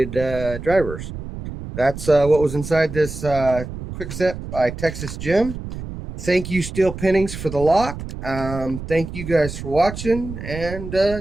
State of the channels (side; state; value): right; noise; rumble, 9 dB below the sound